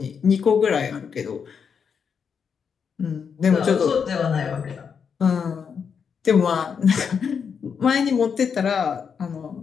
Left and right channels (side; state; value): right; quieter; 6.6 dB